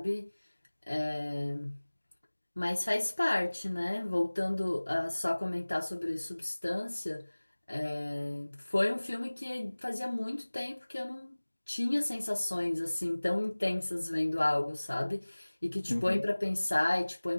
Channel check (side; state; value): both; inverted; correlation -1.00